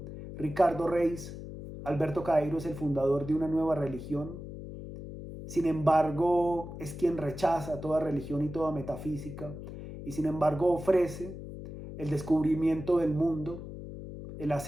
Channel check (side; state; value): left; noise; hum, 10 dB below the sound